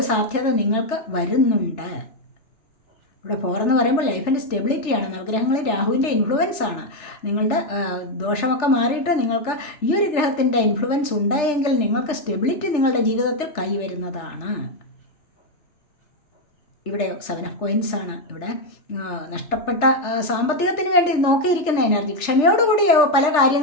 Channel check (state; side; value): late; right; 3.4 ms